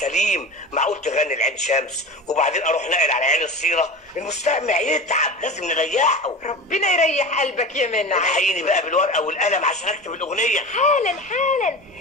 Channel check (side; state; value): both; normal; correlation 0.31